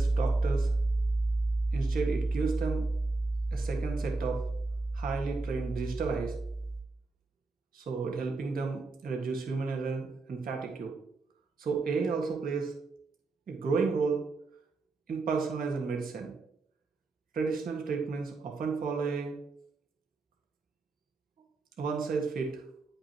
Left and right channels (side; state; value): left; quieter; 3.5 dB